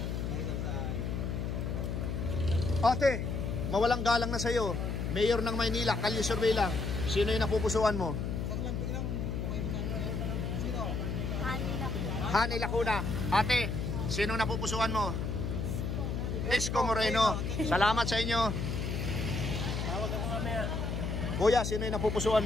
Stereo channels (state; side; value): noise; left; hum, 2 dB below the sound